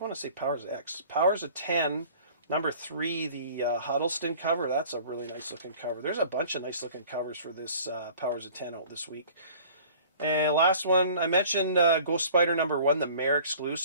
to say Powers of X. Powers of 10, number 3, the Huddleston cover. That's a really nice looking cover. There's a bunch of nice looking covers for this Powers of 10 out this week. And last one, I mentioned Ghost Spider number 1, the Maer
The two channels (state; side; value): inverted; both; correlation -0.48